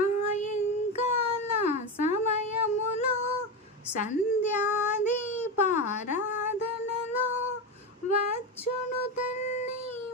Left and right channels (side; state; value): both; normal; correlation 0.16